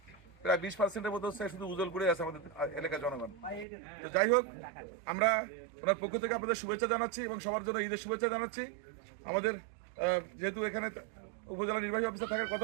প্রায় 20%-এর মতো হচ্ছে শুধু উজলপুরে আছে আমাদের এলাকার জনগণ। তো যাই হোক, আমরা ওনার পক্ষ থেকে আপনাদের শুভেচ্ছা জানাচ্ছি এবং সবার জন্য ঈদের শুভেচ্ছা জানাচ্ছি। আমাদের যেহেতু এখানে উপজেলা নির্বাহী অফিসার থাকার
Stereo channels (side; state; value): left; drops out; at 3.7 s